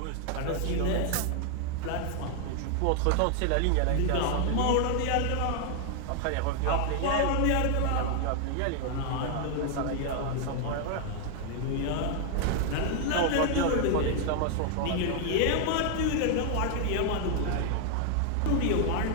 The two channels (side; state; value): both; different; correlation 0.00